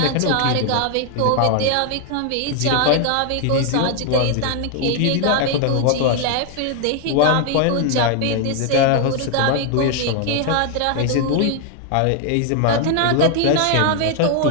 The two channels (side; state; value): both; different; correlation 0.00